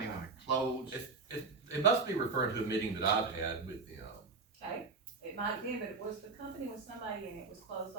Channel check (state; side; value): quieter; left; 4.3 dB